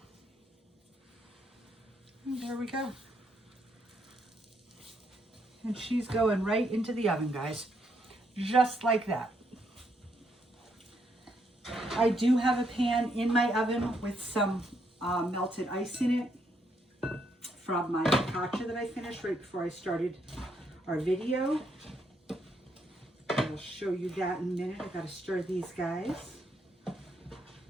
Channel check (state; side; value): normal; both; correlation 0.75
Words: And there we go. And she's going right into the oven, guys. Just like that. I do have a pan in my oven with some melted ice in it from my focaccia that I finished right before I started our video. I'll show you that in a minute. I gotta stir these guys.